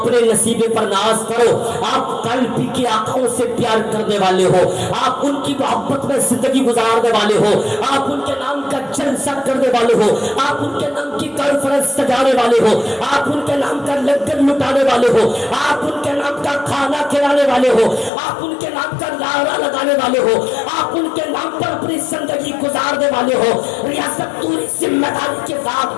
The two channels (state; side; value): drops out; right; at 18.1 s